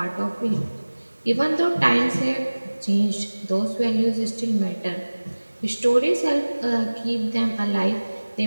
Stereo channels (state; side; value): inverted; both; correlation -1.00